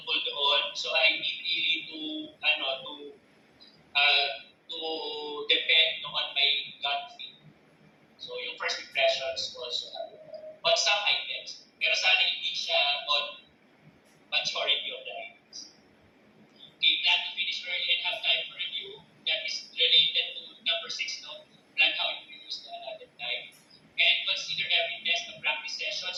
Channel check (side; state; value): both; identical; correlation 1.00